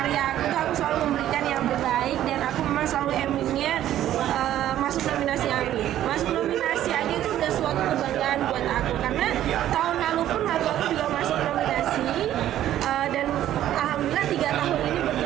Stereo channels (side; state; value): left; quieter; 12.3 dB